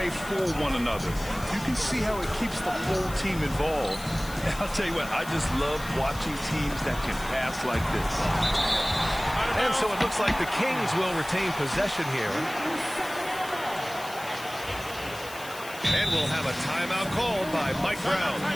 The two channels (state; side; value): noise; left; hiss, 15 dB below the sound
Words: for one another. You can see how it keeps the whole team involved. And I'll tell you what, I just love watching teams that can pass like this. And so it looks like the Kings will retain possession here. And we'll have a timeout called by Mike Brown.